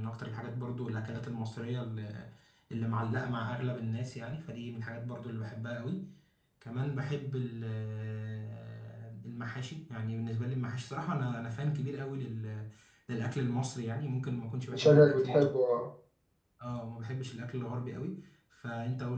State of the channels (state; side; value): identical; both; correlation 1.00